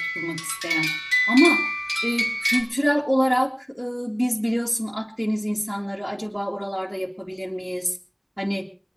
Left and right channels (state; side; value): identical; both; correlation 1.00